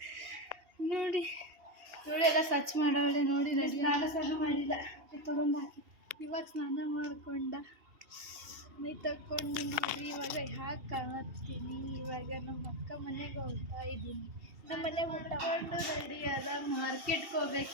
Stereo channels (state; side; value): late; left; 2.8 ms